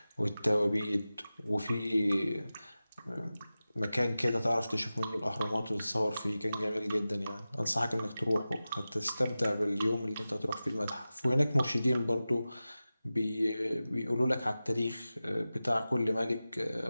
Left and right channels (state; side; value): inverted; both; correlation -0.95